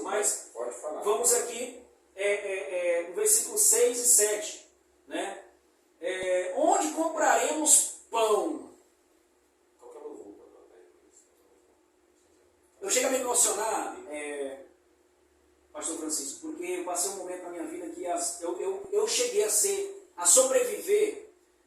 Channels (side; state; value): both; identical; correlation 1.00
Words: Mas pode falar. Vamos aqui no versículo 6 e 7. Né? Onde compraremos pão? Eu chego a me emocionar, Pastor Francisco, porque eu passei um momento na minha vida que eu cheguei a sobreviver